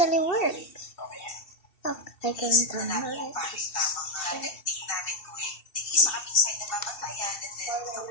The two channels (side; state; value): right; late; 2.7 ms